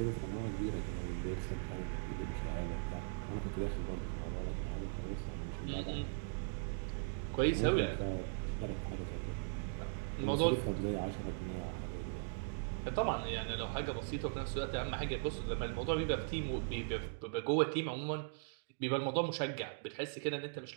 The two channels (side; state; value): left; silent; digital silence